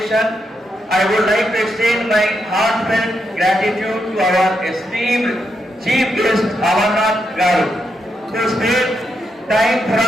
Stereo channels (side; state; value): both; normal; correlation 0.82